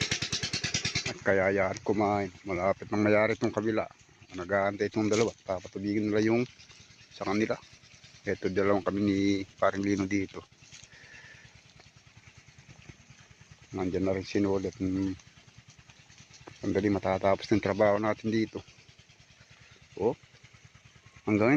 At kaya yan kumain. Malapit nang mayari itong kabila. Nag-aantay itong dalawa. Papatubigin nila yung sa kanila. Ito dalawang kami ni Paring Lino dito. Nandyan na rin sinulit. Sandali matatapos ng trabaho natin dito. Oh. Hanggang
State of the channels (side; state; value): both; identical; correlation 1.00